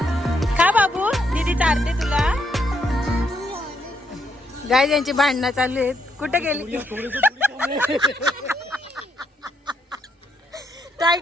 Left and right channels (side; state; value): both; normal; correlation 0.76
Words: खा बाबू दीदी चारते तुला. गाय यांची भांडणं चालू आहेत. कुठे गेली